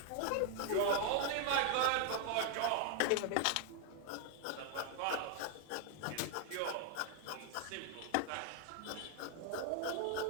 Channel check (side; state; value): both; different; correlation 0.00